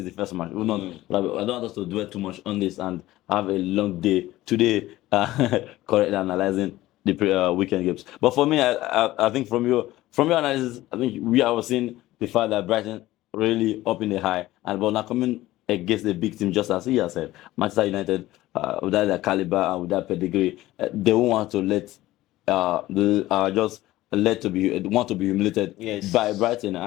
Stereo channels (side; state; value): right; quieter; 16.5 dB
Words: the first match. I don't want us to dwell too much on this and have a long day today, correctly analyzing the weekend games. But for me, I think from your analysis, I think we are seeing the fact that Brighton really up in the high, and but now coming against a big team, just as he has said, Manchester United, with that caliber and with that pedigree, they won't want to want to be humiliated by Brighton,